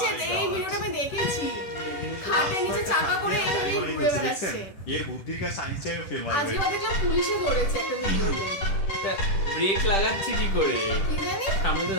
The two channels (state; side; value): late; right; 10 ms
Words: যে মাই এই গড, ভিডিওটা আমি দেখেছি, খাটের নিচে চাকা করে গাড়ি এমনি বানাই ঘুরে ফেলছে, বেড়াচ্ছে। দেখছেন? এর বুদ্ধির কাছে আইনস্টাইনও ফেল মারবে। আজকে দেখলাম পুলিশে ধরেছে একটা ভিডিওতে, ব্রেক লাগাচ্ছে কি করে, কি জানি? সামনে তো